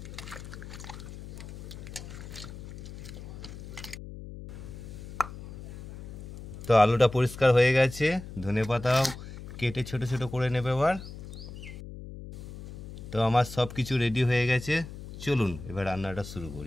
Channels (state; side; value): noise; left; hum, 12 dB below the sound